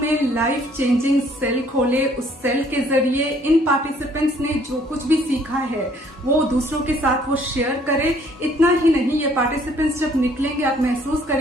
में लाइफ चेंजिंग सेल खोले, उस सेल के जरिए इन पार्टिसिपेंट्स ने जो कुछ भी सीखा है वो दूसरों के साथ वो शेयर करे। इतना ही नहीं, ये पार्टिसिपेंट्स जब निकलेंगे आप महसूस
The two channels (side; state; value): both; normal; correlation 0.61